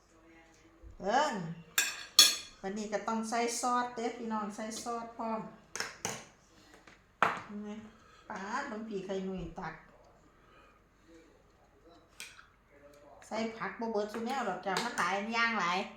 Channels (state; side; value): identical; both; correlation 1.00